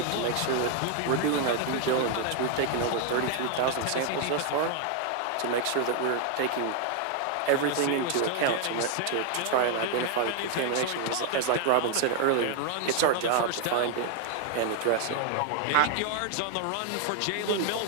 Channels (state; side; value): different; both; correlation 0.00